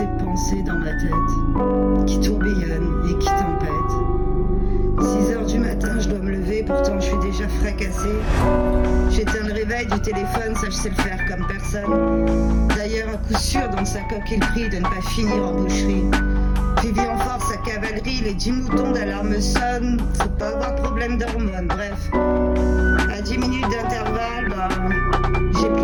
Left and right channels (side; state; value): both; identical; correlation 1.00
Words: pensées dans ma tête, qui tourbillonnent et qui tempêtent. 6h du matin, je dois me lever, pourtant je suis déjà fracassée. J'éteins le réveil du téléphone, ça je sais le faire comme personne. D'ailleurs, à coup sûr, dans sa coquille prie de ne pas finir en boucherie. Vivi en force à cavalerie, les 10 moutons d'alarme sonnent. Faut pas avoir problème d'hormones, bref. À 10 minutes d'intervalle, j'ai